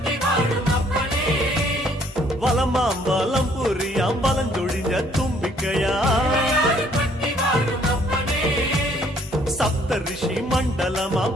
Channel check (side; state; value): both; normal; correlation 0.63